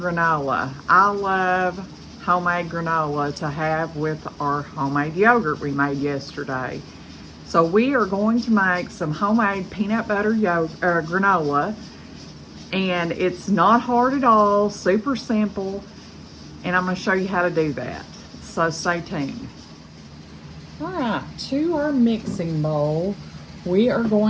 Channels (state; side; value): identical; both; correlation 1.00